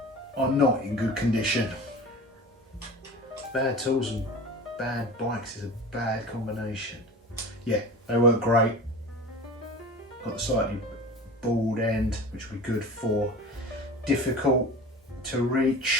are not in good condition. Bad tools and bad bikes is a bad combination. Yeah, they work great. Got the slightly bald end, which will be good for difficult to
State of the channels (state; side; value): normal; both; correlation 0.35